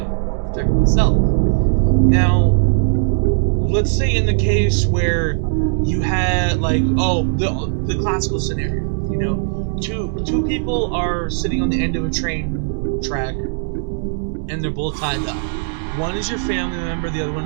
or protect myself. Now, let's say in the case where you had, the classical scenario, two people are sitting on the end of a train track, and they're both tied up. One is your family member, the other one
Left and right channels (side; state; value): left; silent; digital silence